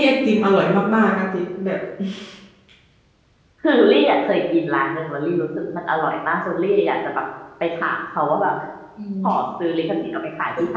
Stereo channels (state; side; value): identical; both; correlation 1.00